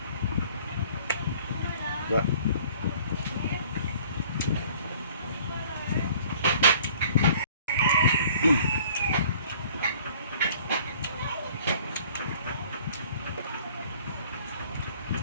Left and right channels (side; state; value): both; inverted; correlation -0.53